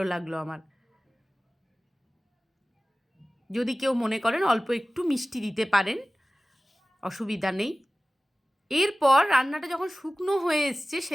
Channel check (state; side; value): normal; both; correlation 0.97